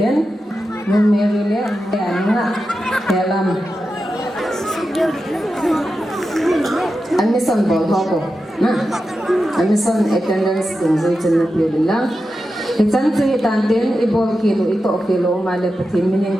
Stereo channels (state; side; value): normal; both; correlation 0.90